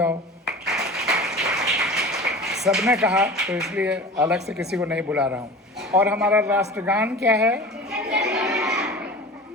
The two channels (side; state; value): both; normal; correlation 0.36